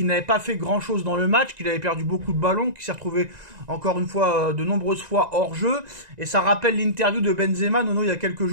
n'avait pas fait grand chose dans le match, qu'il avait perdu beaucoup de ballons, qu'il s'est retrouvé encore une fois de nombreuses fois hors jeu. Et ça rappelle l'interview de Benzema, Nono, il y a quelques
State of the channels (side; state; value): left; late; 1.9 ms